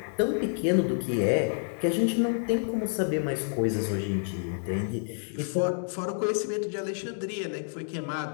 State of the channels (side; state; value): right; silent; digital silence